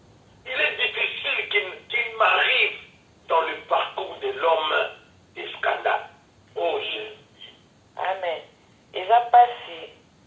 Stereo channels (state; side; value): identical; both; correlation 1.00